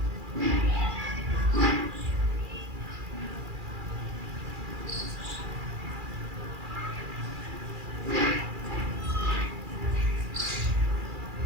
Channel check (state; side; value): late; left; 2.4 ms